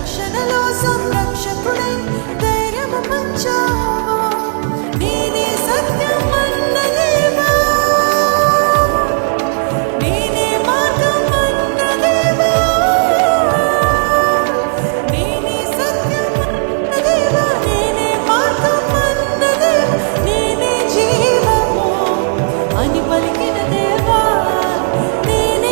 సంరక్షకుడై ధైర్యము పంచావు. నేనే సత్యం అన్నదేవా, నేనే మార్గం అన్నదేవా, నేనే సత్యం అన్నదేవా, నేనే మార్గం అన్నదేవా, నేనే జీవము అని పలికిన దేవా,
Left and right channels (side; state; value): left; silent; digital silence